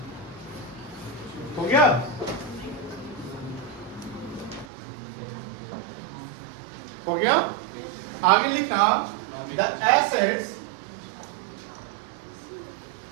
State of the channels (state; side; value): drops out; left; at 4.7 s